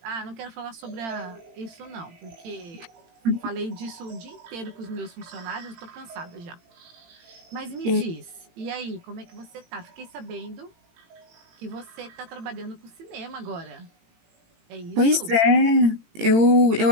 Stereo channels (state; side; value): late; left; 18 ms